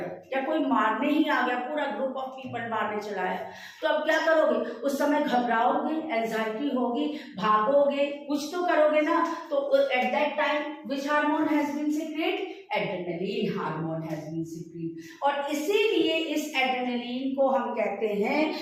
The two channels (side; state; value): both; identical; correlation 1.00